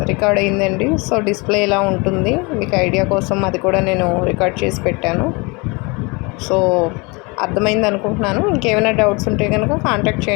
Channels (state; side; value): quieter; right; 27.8 dB